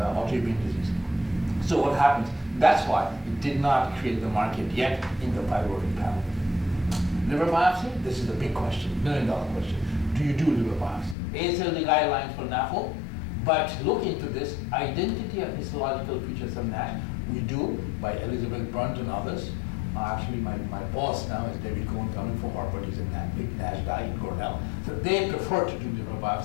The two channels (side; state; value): right; drops out; at 11.2 s